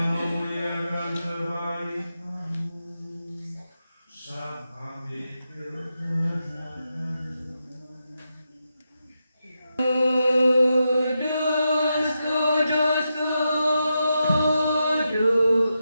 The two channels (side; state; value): both; inverted; correlation -0.87